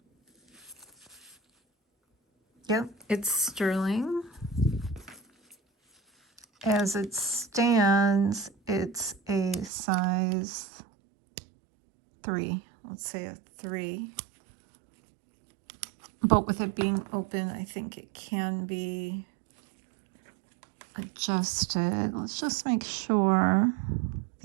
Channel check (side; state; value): left; drops out; at 9.7 s